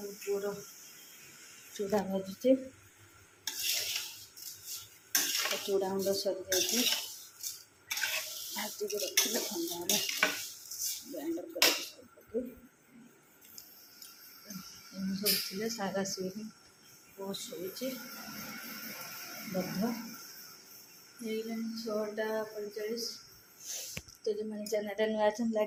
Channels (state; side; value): identical; both; correlation 1.00